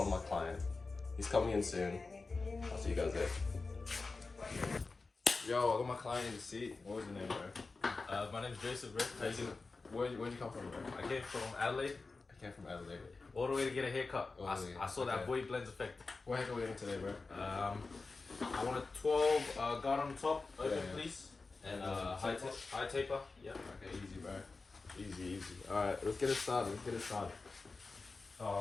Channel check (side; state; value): right; quieter; 3.9 dB